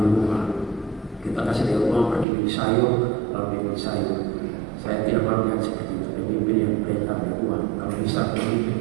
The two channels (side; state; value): left; drops out; at 2.2 s